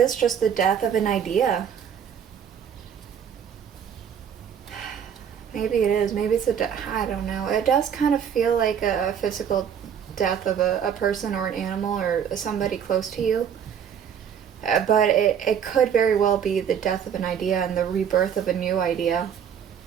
just the death of an idea. Maybe it is. Maybe it's I don't know. It does kind of feel like a physical death of a person or an animal or somebody close to you. But it could very well be the death of an idea and the rebirth of a new idea.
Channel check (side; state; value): left; quieter; 8.1 dB